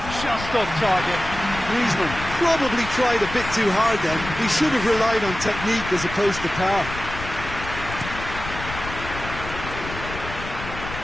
Just off target. Griezmann probably tried a bit too hard then. He should have relied on technique as opposed to power.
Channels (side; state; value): left; noise; rumble, 10 dB below the sound